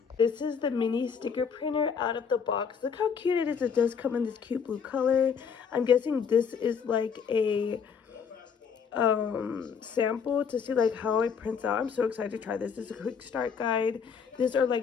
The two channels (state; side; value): quieter; right; 6.5 dB